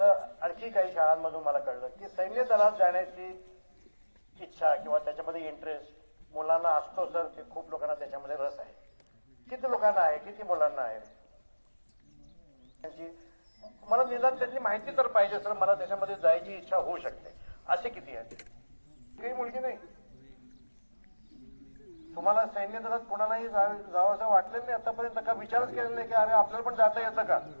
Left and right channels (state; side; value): inverted; both; correlation -1.00